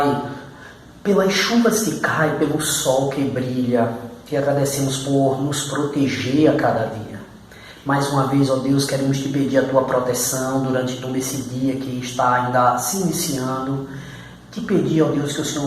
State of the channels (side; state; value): both; identical; correlation 1.00